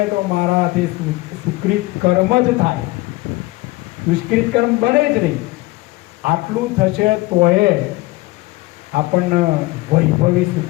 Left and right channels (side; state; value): right; quieter; 20.6 dB